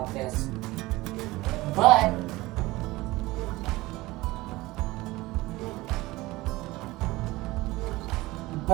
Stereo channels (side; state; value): left; quieter; 19.8 dB